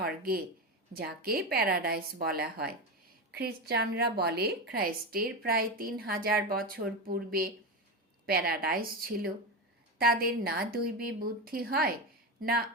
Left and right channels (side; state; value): both; normal; correlation 0.17